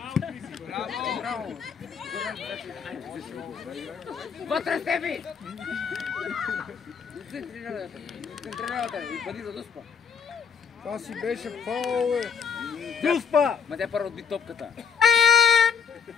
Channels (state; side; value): quieter; right; 6.3 dB